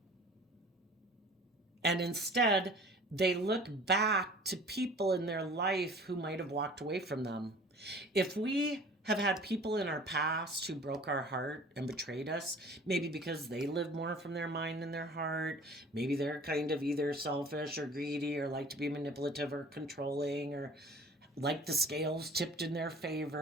And instead, they look back to people in their life who might have walked away from them. If we have had people in our past who broke our heart and betrayed us, maybe because they lived more from their mind than their heart, maybe they're kind of either selfish or greedy or like to be manipulative or controlling, or like the scales tipped in their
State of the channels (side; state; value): both; normal; correlation 0.46